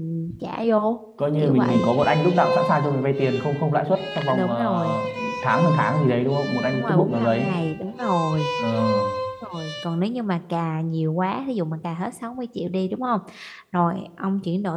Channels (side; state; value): both; identical; correlation 1.00